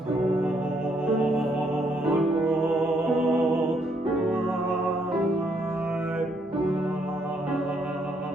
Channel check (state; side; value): normal; both; correlation 0.72